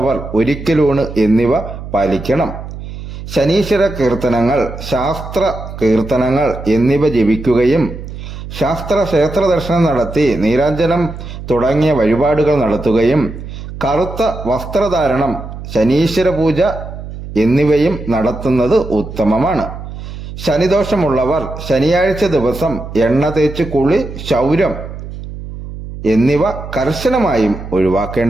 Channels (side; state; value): right; noise; hum, 11 dB below the sound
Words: ഒരിക്കലൂണ് എന്നിവ പാലിക്കണം. ശനീശ്വര കീർത്തനങ്ങൾ, ശാസ്ത്ര കീർത്തനങ്ങൾ എന്നിവ ജപിക്കുകയും ക്ഷേത്ര ദർശനം നടത്തി നീരാഞ്ജനം തുടങ്ങിയ വഴിപാടുകൾ നടത്തുകയും കറുത്ത വസ്ത്രധാരണം, ശനീശ്വര പൂജ എന്നിവയും നടത്തുന്നത് ഉത്തമമാണ്. ശനിദോഷമുള്ളവർ ശനിയാഴ്ച ദിവസം എണ്ണ തേച്ച് കുളി, ക്ഷൗരം എന്നിവ കർശനമായും